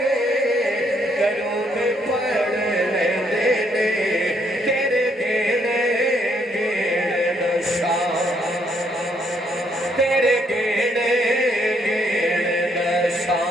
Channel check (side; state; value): both; normal; correlation 0.72